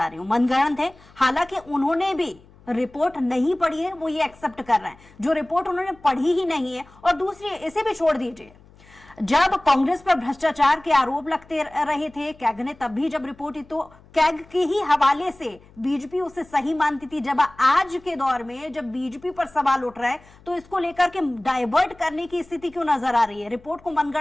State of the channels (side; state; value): left; noise; hum, 26 dB below the sound